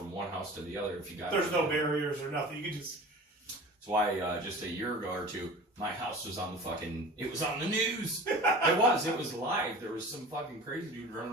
one house to the other if you got. There's no barriers or nothing. You can just. That's why just a year ago or 2, my house was on the fucking. It was on the news. It was live. There was some fucking crazy dude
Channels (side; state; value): both; normal; correlation 0.38